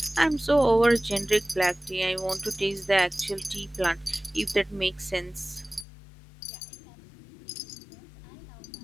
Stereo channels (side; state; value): right; drops out; at 5.9 s